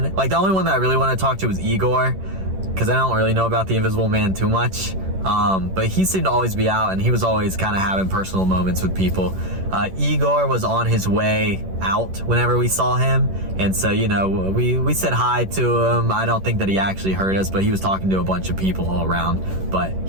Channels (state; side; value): late; left; 11 ms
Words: only one that I really want to talk to was Igor, because I don't really know about the Invisible Man too much. But he seemed to always be out, and he was always kind of having personal moments with people. Igor was on his way out whenever we saw him, and so, you know, we said hi to him. I don't think that he actually heard us, but he was talking to a bunch of people all around, but